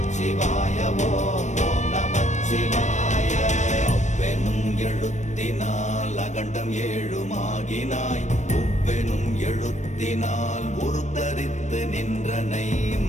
ஓம் ஓம் நமச்சிவாய. அவ்வெனும் எழுத்தினால் அகண்டம் ஏழுமாகினாய், உவ்வெனும் எழுத்தினால் உருத்தரித்து நின்றனை,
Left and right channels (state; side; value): late; right; 0.34 ms